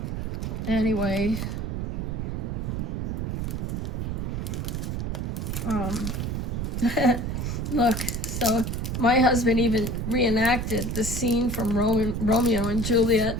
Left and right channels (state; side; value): noise; right; rumble, 2 dB below the sound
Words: Anyway, look, so my husband even reenacted the scene from Romeo and Juliet.